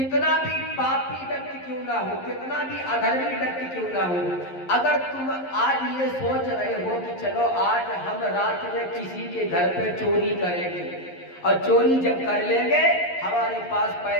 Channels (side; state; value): right; late; 11 ms